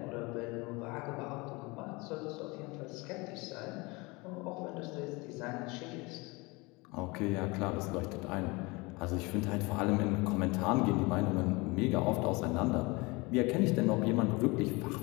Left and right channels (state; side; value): quieter; right; 25.4 dB